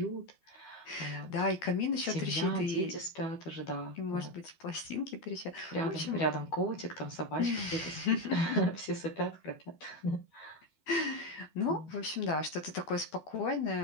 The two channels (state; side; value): late; right; 12 ms